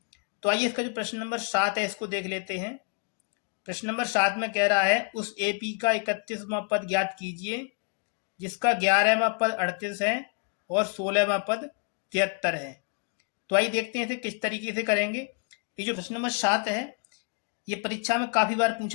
तो आइए इसका जो प्रश्न नंबर 7 है इसको देख लेते हैं। प्रश्न नंबर 7 में कह रहा है उस एपी का 31वां पद ज्ञात कीजिए जिसका 11वां पद 38 है और 16वां पद 73 है। तो आइए देखते हैं इसे किस तरीके से करेंगे। ये जो प्रश्न नंबर 7 है ये परीक्षा में काफ़ी बार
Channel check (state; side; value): quieter; right; 36.9 dB